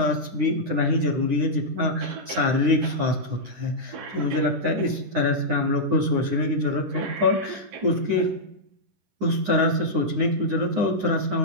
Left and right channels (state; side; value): late; left; 9.7 ms